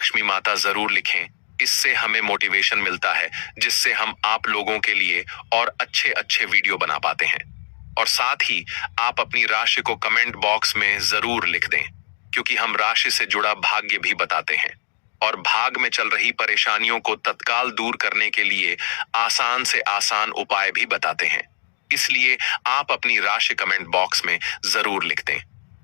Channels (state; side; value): silent; right; digital silence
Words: माता जरूर लिखें। इससे हमें मोटिवेशन मिलता है, जिससे हम आप लोगों के लिए और अच्छे अच्छे वीडियो बना पाते हैं। और साथ ही आप अपनी राशि को कमेंट बॉक्स में जरूर लिख दें, क्योंकि हम राशि से जुड़ा भाग्य भी बताते हैं और भाग में चल रही परेशानियों को तत्काल दूर करने के लिए आसान से आसान उपाय भी बताते हैं। इसलिए आप अपनी राशि कमेंट बॉक्स में जरूर लिख दें।